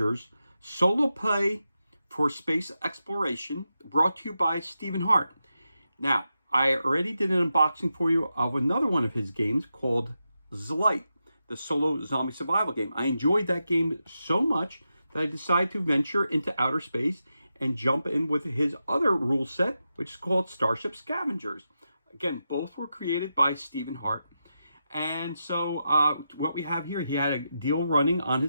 solo play for space exploration, brought to you by Stephen Hart. Now, I already did an unboxing for you of another one of his games called Zlight, the solo zombie survival game. I enjoyed that game so much that I decided to venture into outer space and jump in with his other rule set, which is called Starship Scavengers. Again, both were created by Stephen Hart. And so what we have here, he had a deal running on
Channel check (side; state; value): both; inverted; correlation -0.88